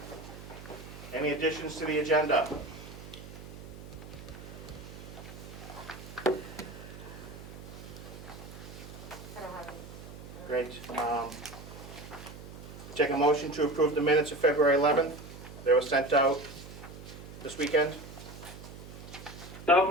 Any additions to the agenda? Great. Take a motion to approve the minutes of February 11th. They were sent out this weekend. So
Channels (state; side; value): noise; right; hum, 14 dB below the sound